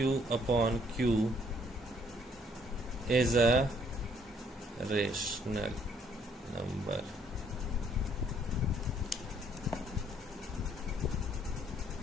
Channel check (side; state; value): both; normal; correlation 0.65